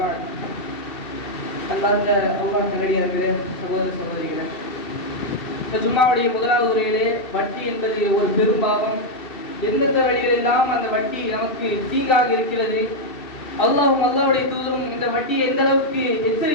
பஅத். அல்லாஹ் நல்லடியார்களே, சகோதர சகோதரிகளே, இந்த ஜும்மாவுடைய முதலாவது உரையிலே வட்டி என்பது ஒரு பெரும் பாவம், எந்தெந்த வழிகளெல்லாம் அந்த வட்டி நமக்கு தீங்காக இருக்கிறது, அல்லாஹ்வும் அல்லாஹ்வுடைய தூதரும் இந்த வட்டியை எந்த அளவுக்கு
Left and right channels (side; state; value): right; late; 2.7 ms